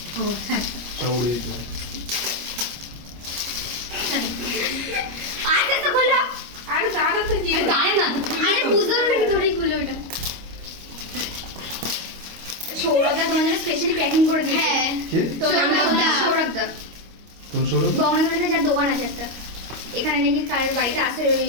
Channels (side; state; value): left; late; 25 ms